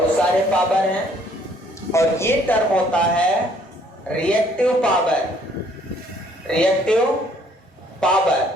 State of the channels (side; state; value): both; normal; correlation 0.62